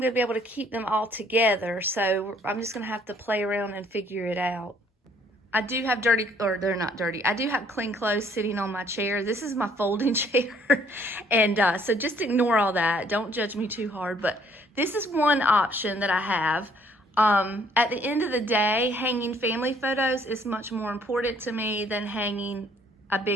to be able to keep them all together. So I'm just going to have to play around and figure it out. I do have dirty, or they're not dirty. I do have clean clothes sitting on my chair. This is my folding chair. And so just ignore all that. Don't judge me too hard. But this is one option that I have. At the end of the day, hanging family photos is much more important to me than hanging a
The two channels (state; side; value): normal; both; correlation 0.63